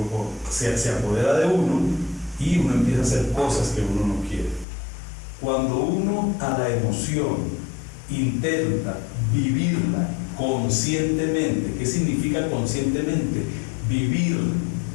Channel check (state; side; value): drops out; right; at 4.7 s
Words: se apodera de uno y uno empieza a hacer cosas que uno no quiere. Cuando uno a la emoción intenta vivirla conscientemente, ¿qué significa conscientemente? Vivir,